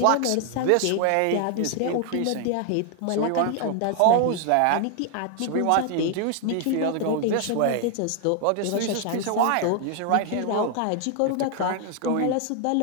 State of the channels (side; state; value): both; different; correlation 0.00